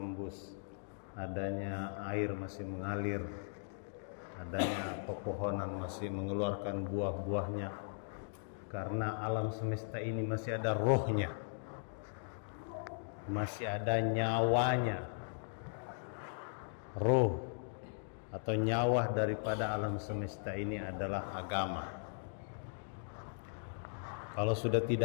adanya air masih mengalir, adanya pepohonan masih mengeluarkan buah-buahnya, karena alam semesta ini masih ada rohnya, masih ada nyawanya. Roh atau nyawa daripada alam semesta ini adalah agama. Kalau sudah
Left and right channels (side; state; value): right; silent; digital silence